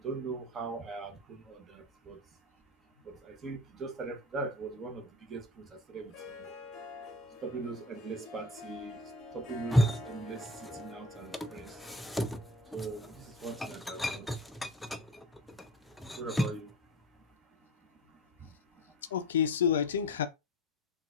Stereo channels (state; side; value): normal; both; correlation 0.36